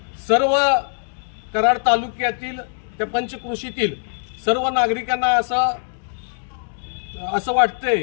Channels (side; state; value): right; silent; digital silence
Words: सर्व कराड तालुक्यातील त्या पंचक्रोशीतील सर्व नागरिकांना असं